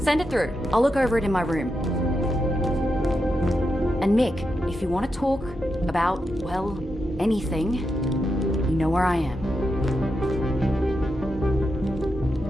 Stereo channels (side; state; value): both; normal; correlation 0.86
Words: Send it through. I'll look over it in my room. And Mick, if you want to talk about, well, anything, you know where I am.